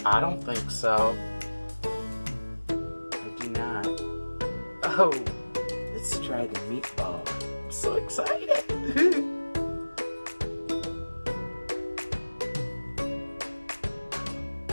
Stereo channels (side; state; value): both; inverted; correlation -1.00